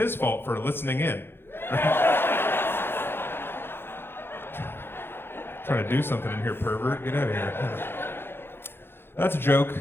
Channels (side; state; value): right; late; 0.11 ms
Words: fault for listening in. Trying to do something in here, pervert. Get out of here. That's a joke.